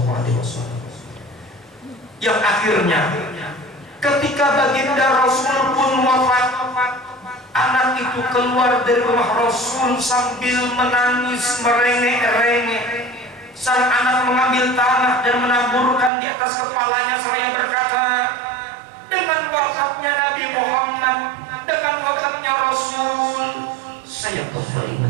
Alaihi Wasallam. Yang akhirnya ketika baginda Rasul pun wafat, anak itu keluar dari rumah Rasul sambil menangis merengek-rengek. Sang anak mengambil tanah dan menaburkan di atas kepalanya seraya berkata, "Dengan wafatnya Nabi Muhammad, dengan wafatnya Rasul, saya kembali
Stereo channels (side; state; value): left; drops out; at 16.1 s